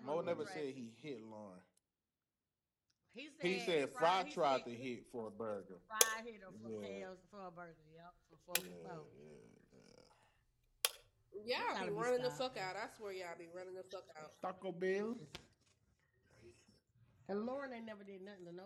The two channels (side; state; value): both; identical; correlation 1.00